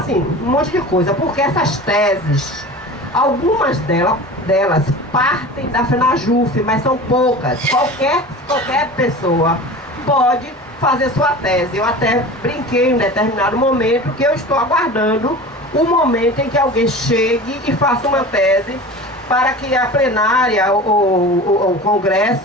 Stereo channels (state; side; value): normal; both; correlation 0.35